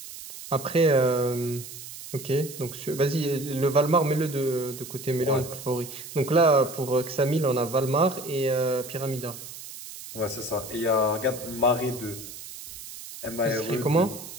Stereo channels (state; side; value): noise; right; hiss, 13 dB below the sound